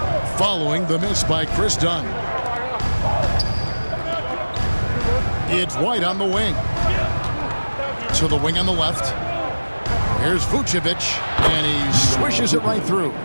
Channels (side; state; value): both; inverted; correlation -1.00